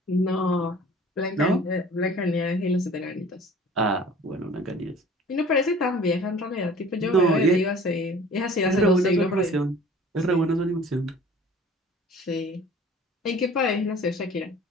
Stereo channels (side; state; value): both; normal; correlation 0.47